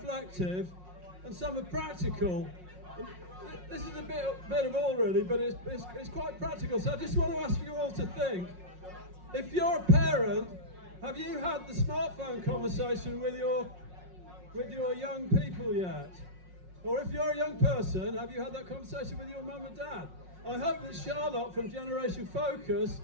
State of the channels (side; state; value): left; late; 5.5 ms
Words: and some are practical. This is a bit of all really, but it's quite practical. So I just want to ask you all to think, if you're a parent, have you had the smartphone conversation with your young people yet? Or if you're a young person, have you had that conversation with your mum and dad? I hope that Charlotte from Generation Focus